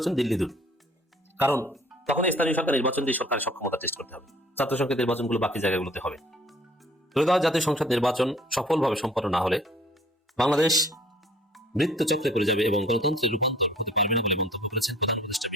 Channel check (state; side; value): normal; both; correlation 0.54